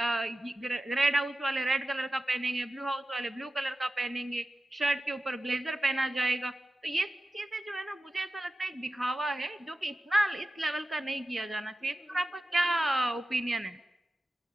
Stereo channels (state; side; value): normal; both; correlation 0.93